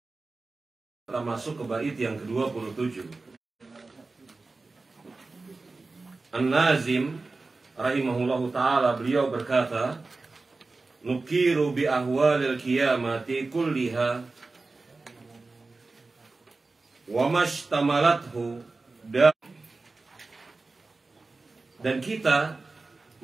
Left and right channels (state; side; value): quieter; left; 3.6 dB